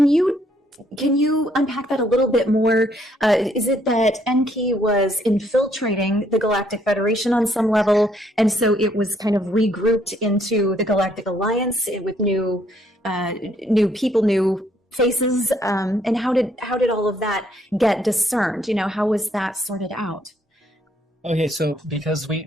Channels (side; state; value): both; normal; correlation 0.68